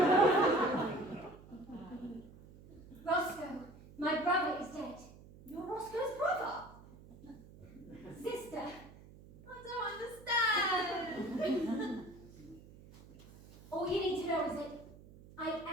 Roscoe, my brother is dead. You're Roscoe's brother? Sister, I don't understand. all you need to know is that I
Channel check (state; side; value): noise; right; hum, 20 dB below the sound